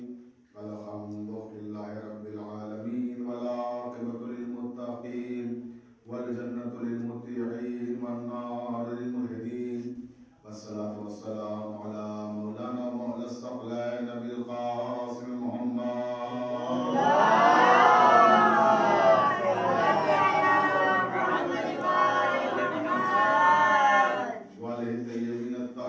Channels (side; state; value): both; identical; correlation 1.00